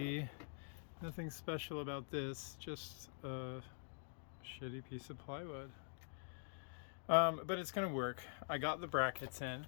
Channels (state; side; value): silent; right; digital silence